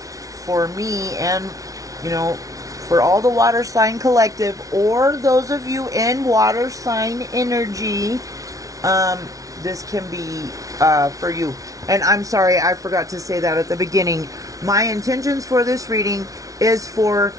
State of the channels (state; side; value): late; left; 0.17 ms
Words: for me and, you know, for all the water sign collective, or those of you in water sign energy, this can be for you. And I'm sorry, I forgot to say that at the beginning. My intentions for this reading is for